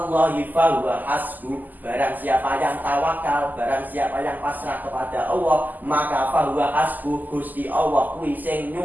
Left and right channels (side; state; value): left; late; 0.084 ms